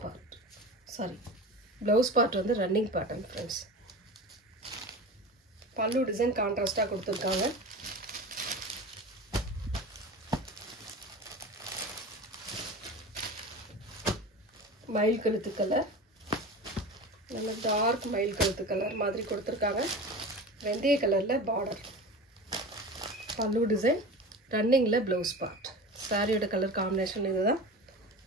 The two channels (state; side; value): normal; both; correlation 0.32